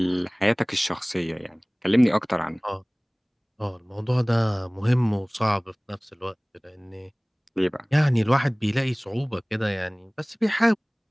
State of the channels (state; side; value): identical; both; correlation 1.00